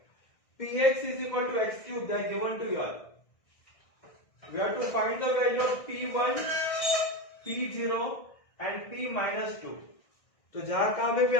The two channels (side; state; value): right; late; 1.6 ms